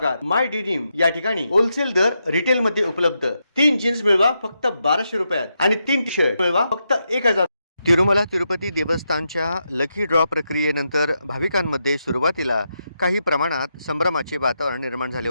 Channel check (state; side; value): inverted; both; correlation -0.84